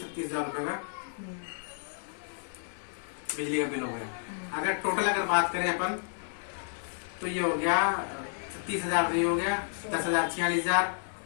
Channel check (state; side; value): silent; right; digital silence